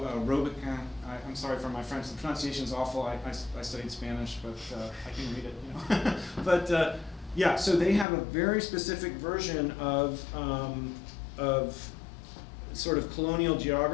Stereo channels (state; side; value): drops out; right; at 8.1 s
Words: Robequin. I'm sorry for my French, the pronunciation's awful. I studied Spanish, but I can read it, But yeah, so they have a very specific version of sort of colonial